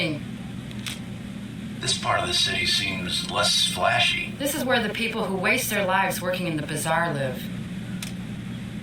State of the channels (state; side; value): identical; both; correlation 1.00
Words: This part of the city seems less flashy. This is where the people who waste their lives working in the bazaar live.